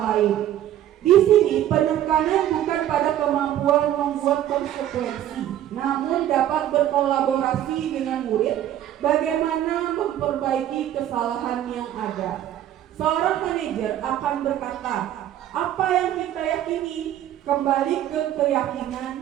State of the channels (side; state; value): left; quieter; 11.8 dB